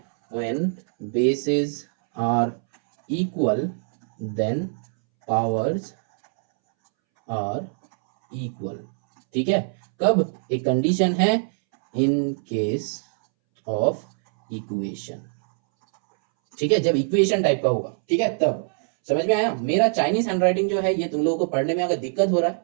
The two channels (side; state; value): left; silent; 63 dB below the other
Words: when bases are equal then powers are equal। ठीक है, कब, एक कंडीशन है in case of equation। ठीक है, जब इक्वेशन टाइप का होगा। ठीक है, तब समझ में आया। मेरा चाइनीज हैंडराइटिंग जो है ये तुम लोगों को पढ़ने में अगर दिक्कत हो रहा